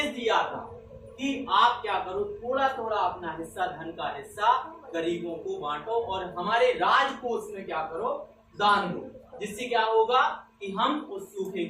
दिया था कि आप क्या करो, थोड़ा थोड़ा अपना हिस्सा, धन का हिस्सा गरीबों को बांटो और हमारे राजकोष में क्या करो? दान दो, जिससे क्या होगा कि हम उस सूखे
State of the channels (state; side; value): identical; both; correlation 1.00